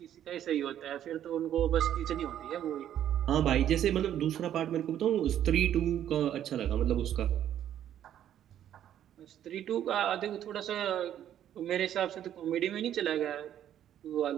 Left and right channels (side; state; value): left; quieter; 10.8 dB